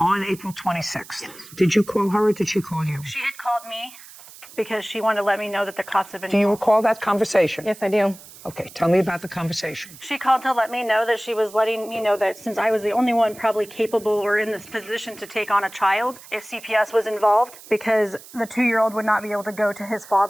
April 26th. Did you call her or did she call you? She had called me because she wanted to let me know that the cops had been. Do you recall that conversation? Yes, I do. Okay, tell me about the conversation. She called to let me know that she was letting me know that since I was the only one probably capable or in this position to take on a child, if CPS was involved, because the 2-year-old would not be able to go to his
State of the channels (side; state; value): right; noise; hiss, 19 dB below the sound